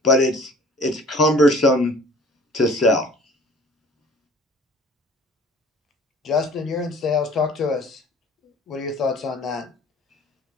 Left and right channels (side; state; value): both; normal; correlation 0.49